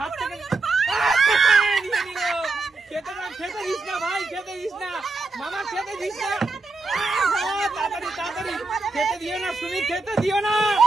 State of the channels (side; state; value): left; quieter; 3.5 dB